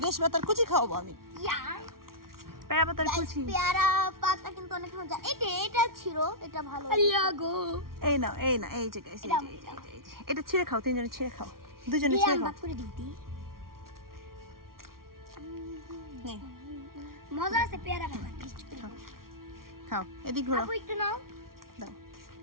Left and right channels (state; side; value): late; left; 0.93 ms